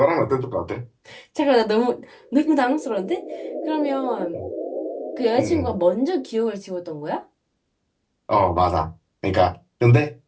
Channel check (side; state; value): both; identical; correlation 1.00